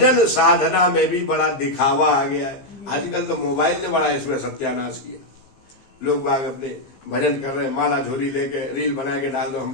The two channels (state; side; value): late; right; 15 ms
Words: साधना में भी बड़ा दिखावा आ गया है। आजकल तो मोबाइल ने बड़ा इसमें सत्यानाश किया। लोग बाग अपने भजन कर रहे हैं, माला झोली लेके रील बना के डाल दो हम